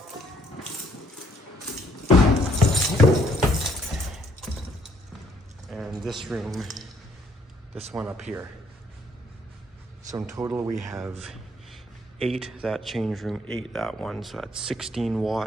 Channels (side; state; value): both; normal; correlation 0.66